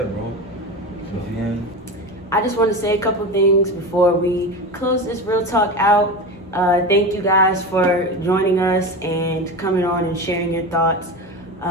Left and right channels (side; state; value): both; normal; correlation 0.24